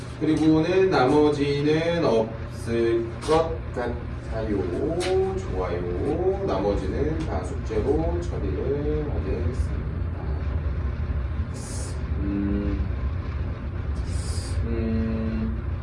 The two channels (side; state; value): both; identical; correlation 1.00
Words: 그리고는 나머지는 없을 것 같아요. 좋아요. 나머지는 다 숙제로 처리를 하겠습니다.